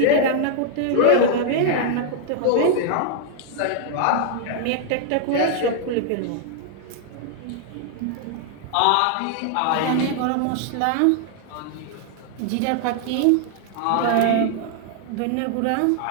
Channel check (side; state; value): both; different; correlation 0.00